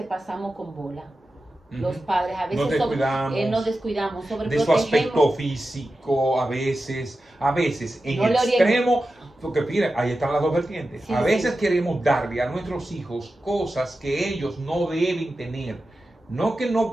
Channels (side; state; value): both; normal; correlation 0.92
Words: pasamos con bola. Los padres a veces nos descuidamos, de su aspecto físico, a veces en no el extremo, porque mira, ahí están las dos vertientes. Sí, a veces queremos darle a nuestros hijos cosas que ellos no deben tener. No que